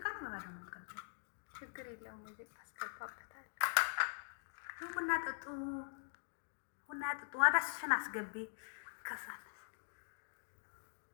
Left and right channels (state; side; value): silent; right; digital silence